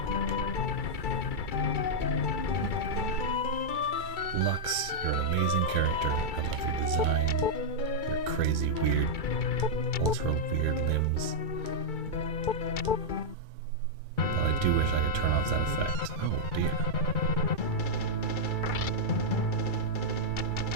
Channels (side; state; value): right; late; 2.3 ms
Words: Lux, you're an amazing character. I love your design, your crazy, weird, ultra weird limbs. But I do wish I could turn off that effect. Oh dear.